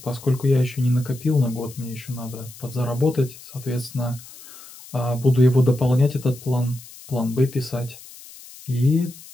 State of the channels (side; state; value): left; noise; hiss, 19 dB below the sound